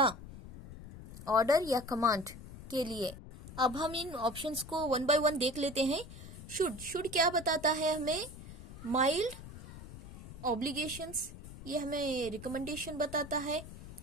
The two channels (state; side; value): noise; left; rumble, 14 dB below the sound